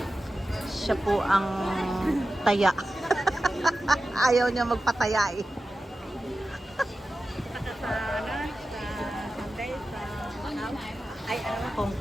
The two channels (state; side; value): normal; both; correlation 0.94